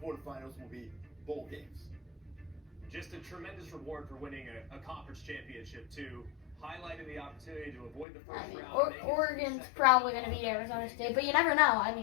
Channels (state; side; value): drops out; right; at 8.1 s